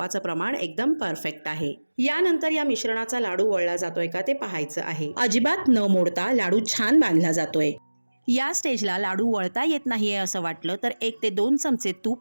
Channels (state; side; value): inverted; both; correlation -1.00